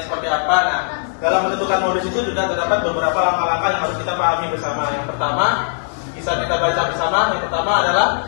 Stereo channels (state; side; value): silent; right; digital silence